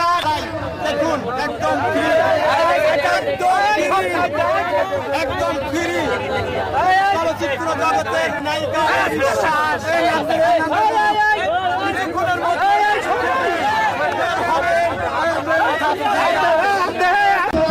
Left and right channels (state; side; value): identical; both; correlation 1.00